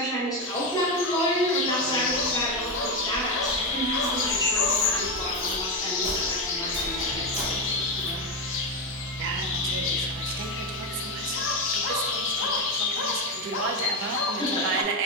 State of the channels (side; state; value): both; normal; correlation 0.12